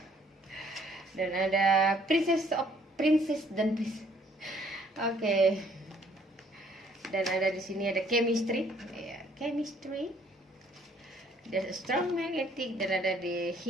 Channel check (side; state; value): both; normal; correlation 0.62